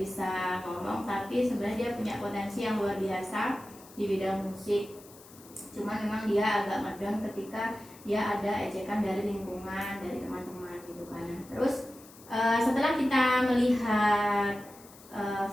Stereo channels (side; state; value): left; noise; hiss, 22 dB below the sound